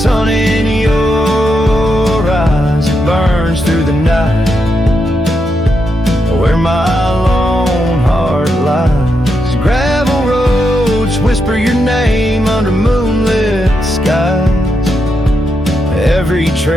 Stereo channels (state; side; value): normal; both; correlation 0.83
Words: in your eyes. It burns through the night where my lone heart lies. Gravel roads whisper your name under moonlit skies. Every